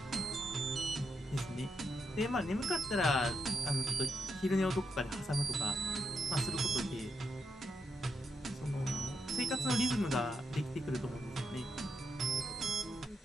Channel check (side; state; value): both; normal; correlation 0.83